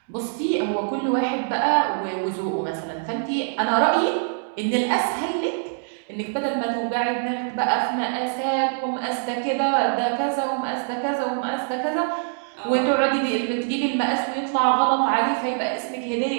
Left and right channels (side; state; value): left; silent; digital silence